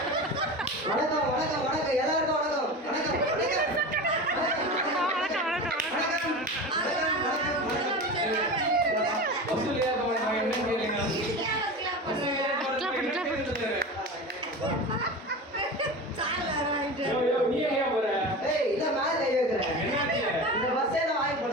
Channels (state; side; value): normal; both; correlation 0.29